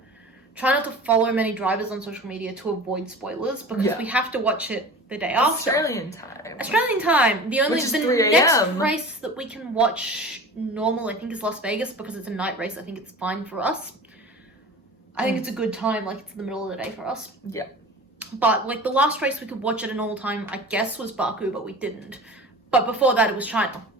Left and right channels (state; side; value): normal; both; correlation 0.37